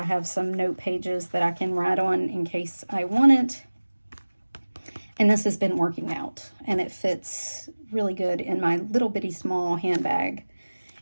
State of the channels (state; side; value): inverted; both; correlation -1.00